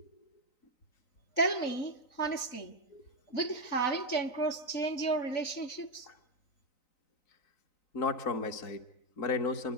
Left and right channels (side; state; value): right; late; 3.9 ms